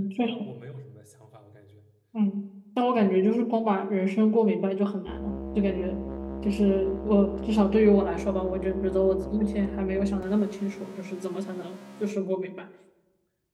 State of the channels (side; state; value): both; identical; correlation 1.00